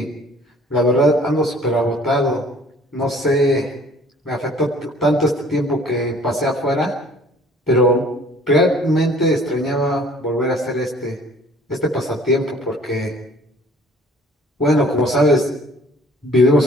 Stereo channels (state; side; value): normal; both; correlation 0.54